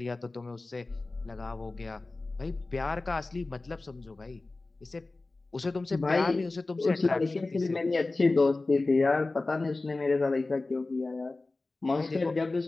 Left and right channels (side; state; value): right; quieter; 3.3 dB